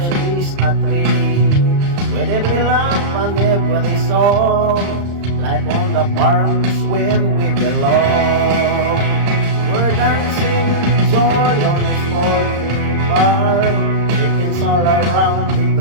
a treat. With every laugh and every song, life on the farm is where we belong. We're dancing with joy on this poultry farm. Chickens all around, they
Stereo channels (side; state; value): left; late; 34 ms